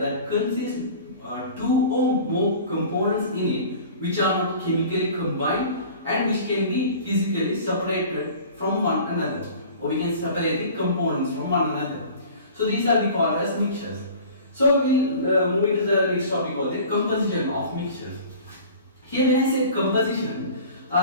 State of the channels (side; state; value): both; inverted; correlation -0.42